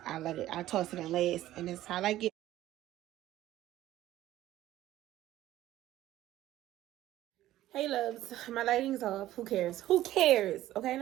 I toss it in last. And that's how I like it. Hey loves, my lighting's off. Who cares? Who cares? Okay,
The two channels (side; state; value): left; quieter; 14.3 dB